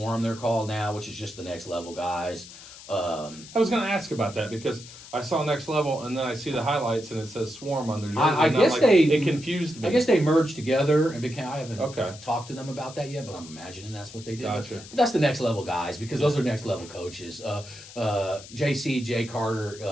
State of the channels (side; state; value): left; noise; hiss, 17 dB below the sound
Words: they're called now, which is just the next level guys. I was going to ask about that because I saw Next Level and then I see the highlights and it says Swarm on their jersey. It confused me. I guess they merged together and became. I haven't Okay. talked to them about that yet, but I'm imagining that's what they did. Gotcha. But that's the next level guys because those are next level coaches. Jay